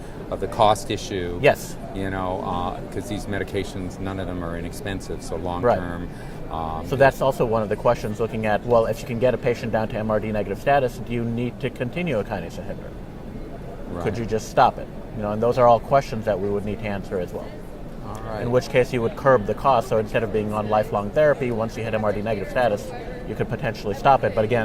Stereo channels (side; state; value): both; identical; correlation 1.00